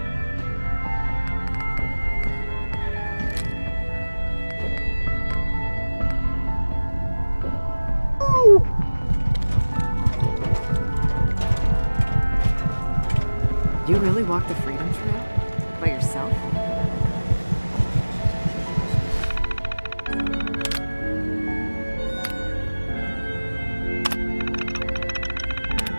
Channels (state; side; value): inverted; both; correlation -1.00